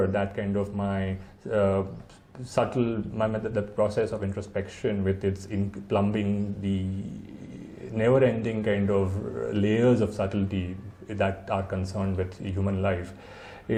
that kind of my the process of introspection with its plumbing the never-ending kind of layers of subtlety that are concerned with human life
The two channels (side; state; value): both; identical; correlation 1.00